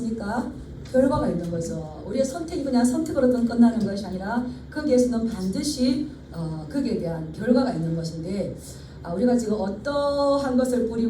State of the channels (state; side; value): identical; both; correlation 1.00